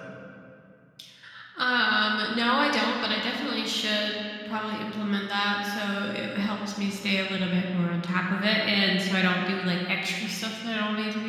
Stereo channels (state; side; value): identical; both; correlation 1.00